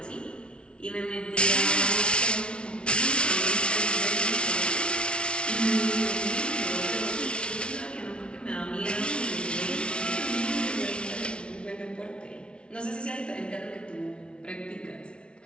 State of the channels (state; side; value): late; right; 0.058 ms